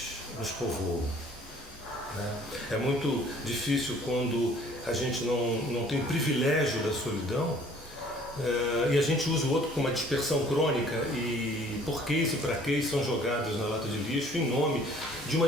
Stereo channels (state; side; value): normal; both; correlation 0.55